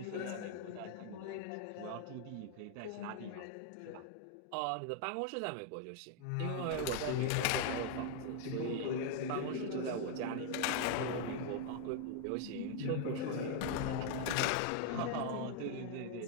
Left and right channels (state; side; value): different; both; correlation 0.00